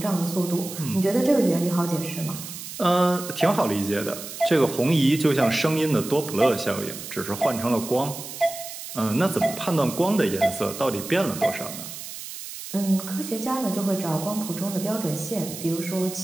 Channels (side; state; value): right; noise; hiss, 10 dB below the sound